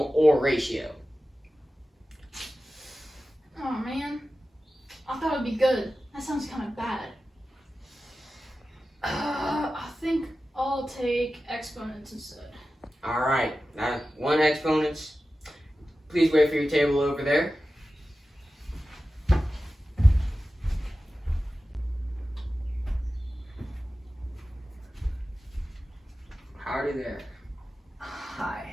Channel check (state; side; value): normal; both; correlation 0.94